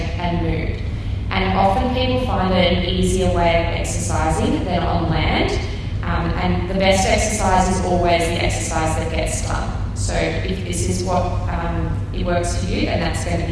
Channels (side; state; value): both; identical; correlation 1.00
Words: and mood. And often people find it an easier way of exercising than on land. And the best exercise is always the exercise that gets done. So if this is what it works for you, then that's going to